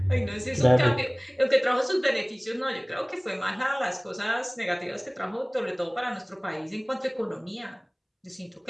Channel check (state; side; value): identical; both; correlation 1.00